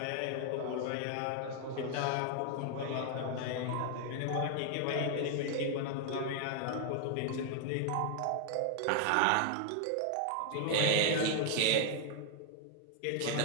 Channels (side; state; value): both; different; correlation 0.00